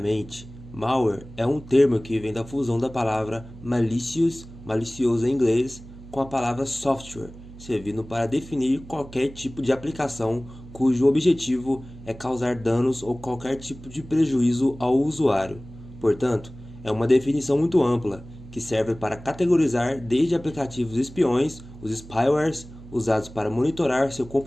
malware é um termo que vem da fusão da palavra malicious, malicioso em inglês, com a palavra software, servindo para definir qualquer tipo de aplicação cujo objetivo é causar danos ou qualquer tipo de prejuízo ao usuário. Portanto, é uma definição muito ampla, que serve para categorizar desde aplicativos espiões, os spywares, usados para monitorar seu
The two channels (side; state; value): right; noise; hum, 17 dB below the sound